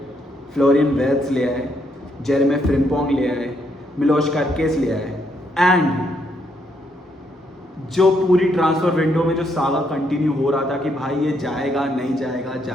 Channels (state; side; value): normal; both; correlation 0.74